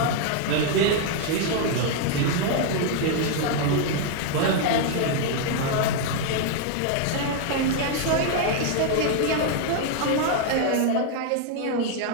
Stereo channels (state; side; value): different; both; correlation 0.00